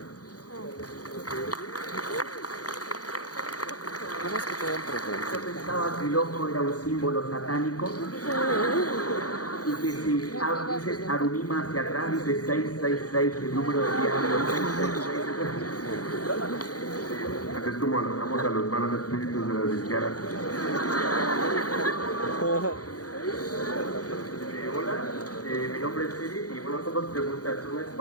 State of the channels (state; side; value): late; right; 0.68 ms